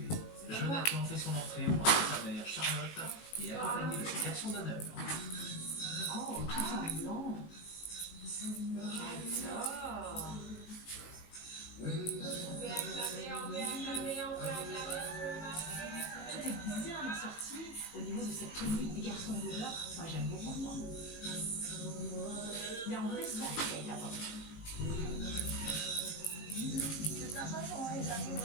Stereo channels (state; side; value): late; right; 19 ms